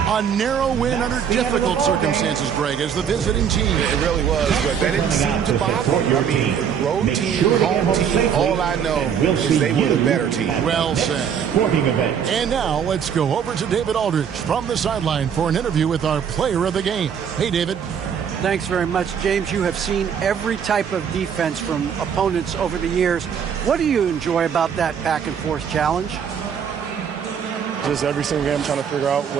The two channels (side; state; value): left; quieter; 7.8 dB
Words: A narrow win under difficult circumstances, Greg, as the visiting team. It really was, but that didn't seem to bother you. I mean, road team, home team, all I know is they were the better team. Well said. And now let's go over to David Aldridge from the sideline for an interview with our player of the game. Hey, David. Thanks very much, James. You have seen every type of defense from opponents over the years. What do you enjoy about that back-and-forth challenge? Just every single game trying to figure out